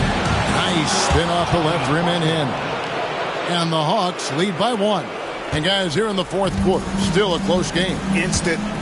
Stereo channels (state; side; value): identical; both; correlation 1.00